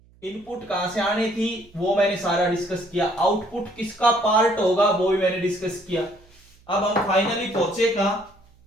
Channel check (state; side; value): noise; right; hum, 29 dB below the sound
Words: इनपुट कहां से आनी थी वो मैंने सारा डिस्कस किया, आउटपुट किसका पार्ट होगा वो भी मैंने डिस्कस किया। अब हम फाइनली पहुंचे कहां,